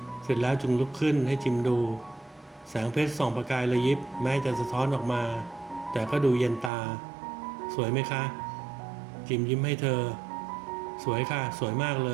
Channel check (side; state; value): left; drops out; at 6.7 s